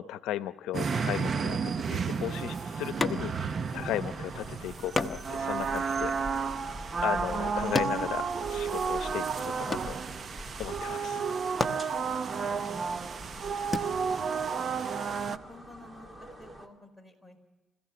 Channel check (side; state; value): both; normal; correlation 0.72